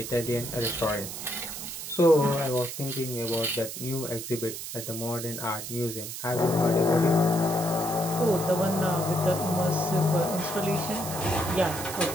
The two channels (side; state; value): right; noise; hiss, 8 dB below the sound